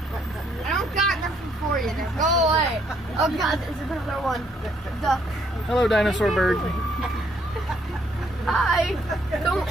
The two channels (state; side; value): normal; both; correlation 0.69